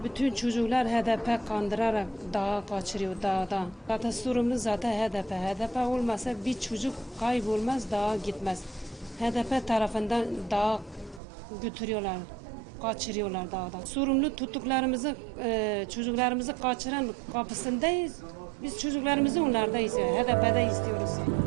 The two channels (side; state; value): left; drops out; at 11.2 s